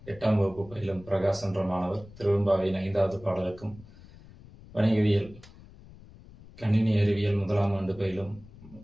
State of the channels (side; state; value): left; noise; rumble, 20 dB below the sound